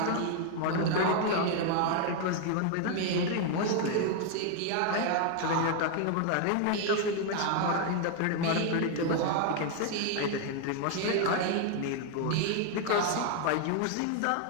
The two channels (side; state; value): both; different; correlation 0.00